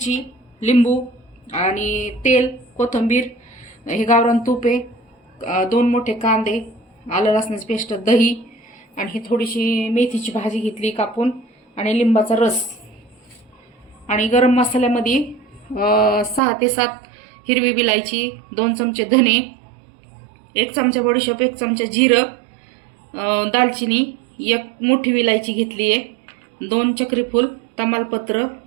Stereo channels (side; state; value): left; drops out; at 16.4 s